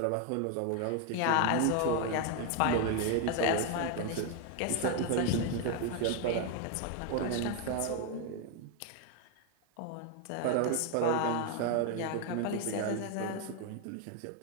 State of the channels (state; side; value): different; both; correlation 0.01